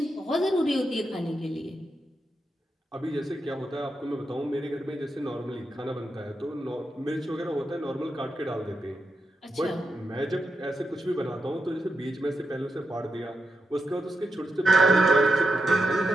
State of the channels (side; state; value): both; normal; correlation 0.86